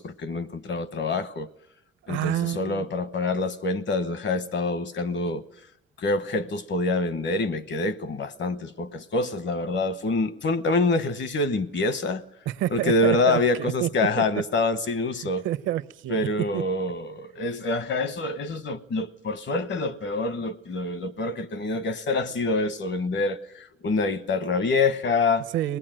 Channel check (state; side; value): normal; both; correlation 0.17